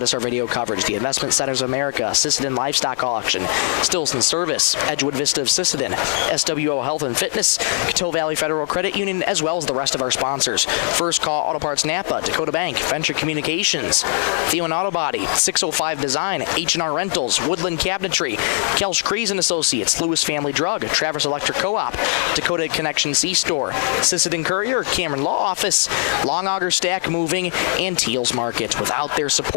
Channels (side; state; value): right; silent; digital silence